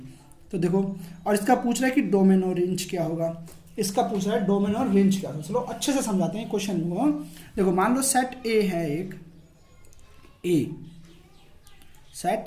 तो देखो, और इसका पूछ रहा है कि डोमेन और रेंज क्या होगा, इसका पूछ रहा है डोमेन और रेंज क्या होगा। चलो अच्छे से समझाते हैं क्वेश्चन को। देखो मान लो सेट ए है, एक ए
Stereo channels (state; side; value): identical; both; correlation 1.00